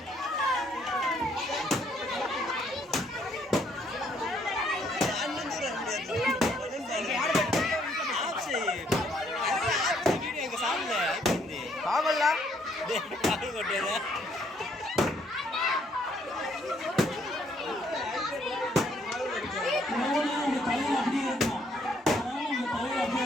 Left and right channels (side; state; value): both; normal; correlation 0.68